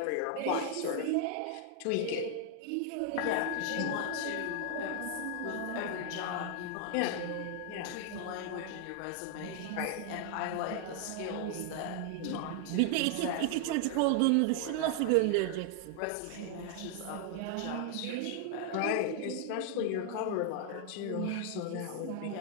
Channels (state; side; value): different; both; correlation 0.00